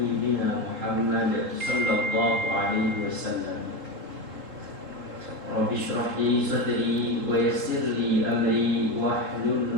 Muhammad sallallahu alaihi wasallam. Rabbi shrah li sadri wa yassir li amri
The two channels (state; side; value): late; left; 3.7 ms